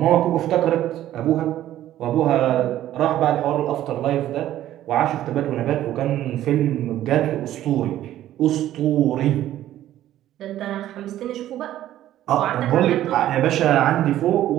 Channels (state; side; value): quieter; left; 13.0 dB